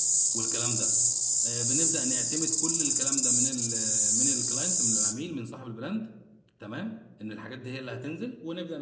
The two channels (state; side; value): identical; both; correlation 1.00